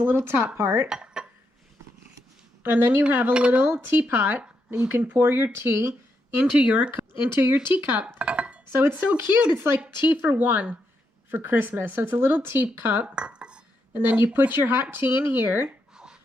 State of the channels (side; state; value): both; normal; correlation 0.81